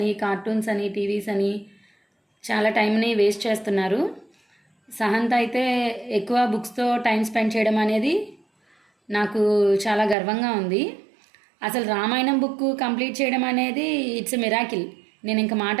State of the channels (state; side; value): drops out; left; at 10.2 s